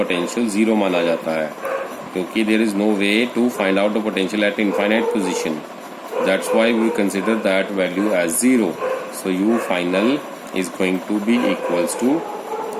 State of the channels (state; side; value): identical; both; correlation 1.00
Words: 0 माना जाता है, क्योंकि there is no way to find out the potential at infinite position, that's why we consider that value as 0। So u final is going to be equals to